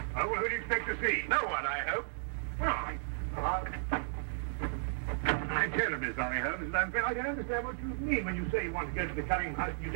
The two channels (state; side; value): silent; left; digital silence